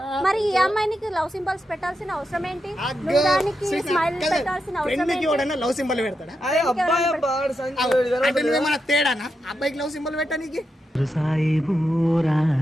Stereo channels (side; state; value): both; normal; correlation 0.86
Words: మరి ఈ అమ్మాయికి లవ్ సింబల్స్ పెట్టాల్సిన అవసరం ఏంటి? నువ్వు దానికి స్మైల్ పెట్టాల్సిన అవసరం ఫ్రెండ్కి ఏంటి? ఎవడన్నా లవ్ సింబల్ పెడతాడా? అరే అబ్బాయి అబ్బా ఆడు సంజు అంటే నువ్వేమన్నా తేడానా అబ్బాయికి లవ్ సింబల్ పెట్టడానికి?